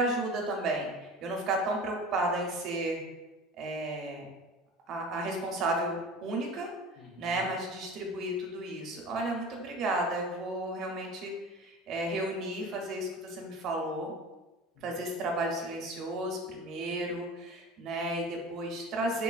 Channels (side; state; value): both; normal; correlation 0.36